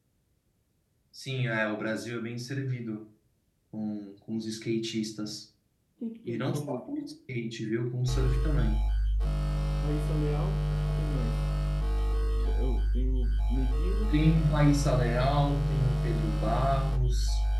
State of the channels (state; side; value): identical; both; correlation 1.00